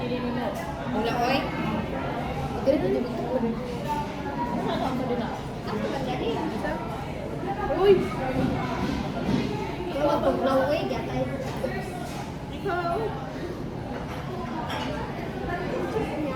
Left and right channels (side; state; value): both; identical; correlation 1.00